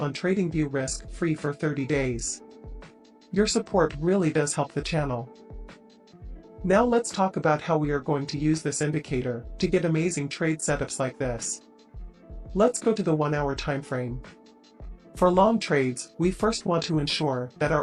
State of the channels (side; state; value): both; identical; correlation 1.00